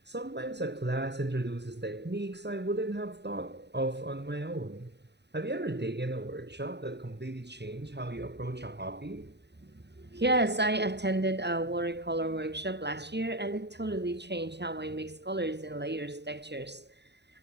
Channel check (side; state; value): left; late; 0.50 ms